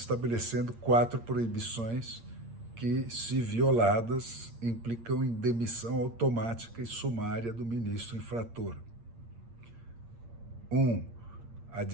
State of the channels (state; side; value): late; left; 8.6 ms